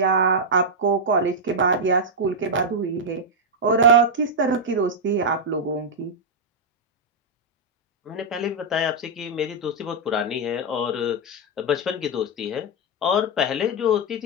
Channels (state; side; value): normal; both; correlation -0.03